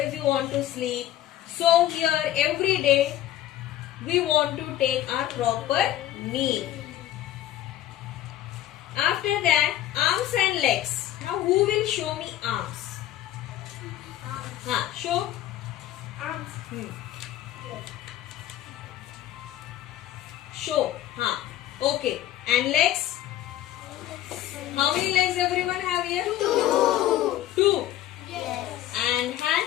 you want to sleep. So here every day we want to take our proper meal. After that, arms and legs. Now who will show me arms? Show. Show. Okay. And legs? How many legs everyone have here? Two. Yes. And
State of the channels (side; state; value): right; quieter; 12.9 dB